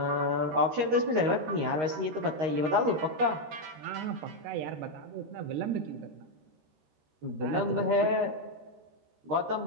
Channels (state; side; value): late; left; 13 ms